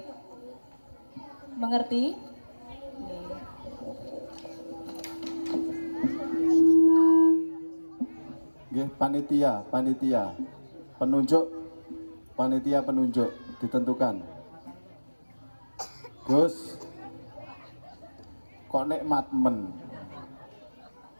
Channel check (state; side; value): inverted; both; correlation -1.00